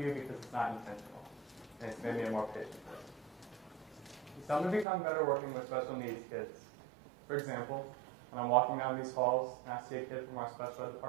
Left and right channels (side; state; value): left; drops out; at 4.9 s